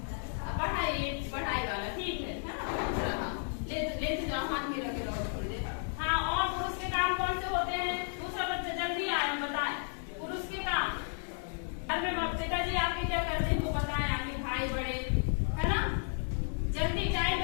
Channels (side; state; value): right; silent; 56 dB below the other